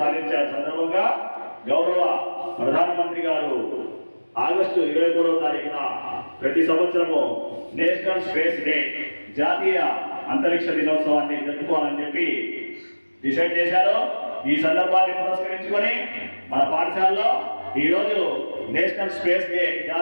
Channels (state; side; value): inverted; both; correlation -1.00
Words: సాధించిన సందర్భంగా గౌరవ ప్రధానమంత్రి గారు ఆగస్టు 23వ తారీఖున ప్రతి సంవత్సరము నేషనల్ స్పేస్ డే జాతీయ అంతరిక్ష దినోత్సవాన్ని జరుపుకోవాలని చెప్పి డిసైడ్ చేశారు. ఈ సందర్భాన్ని పురస్కరించుకొని మన పాఠశాలలో ఈరోజు నేషనల్ స్పేస్ డే